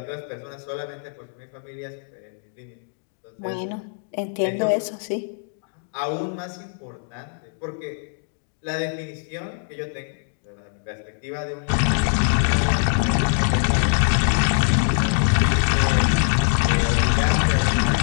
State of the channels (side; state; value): right; silent; digital silence